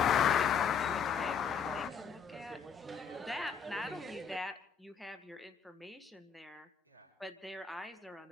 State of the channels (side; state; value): right; quieter; 6.7 dB